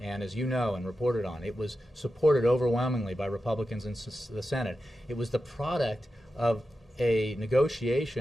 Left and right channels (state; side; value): normal; both; correlation 0.91